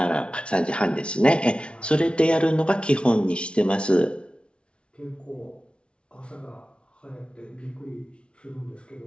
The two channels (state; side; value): late; right; 0.058 ms